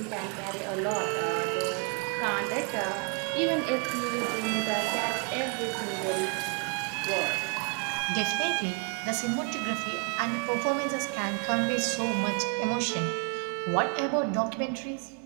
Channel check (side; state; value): left; quieter; 33.8 dB